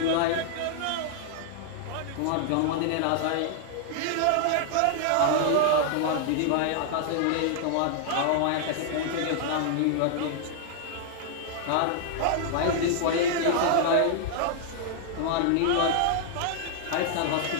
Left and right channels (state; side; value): different; both; correlation -0.01